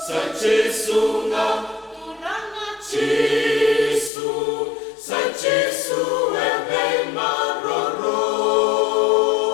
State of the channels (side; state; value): right; drops out; at 4.1 s